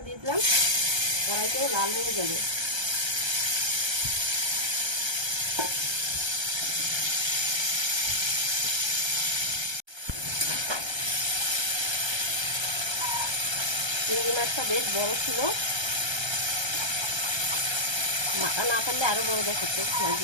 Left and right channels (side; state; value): left; late; 1.3 ms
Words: দিয়ে দিলাম। কড়াইটাও লাল হয়ে যাবে। চিংড়ি মাছটা বেশ বড় ছিল, মাথা না ফেললে আরো বড় দেখাচ্ছে